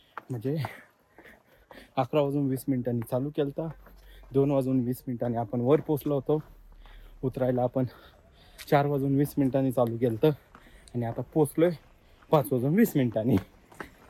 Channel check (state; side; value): identical; both; correlation 1.00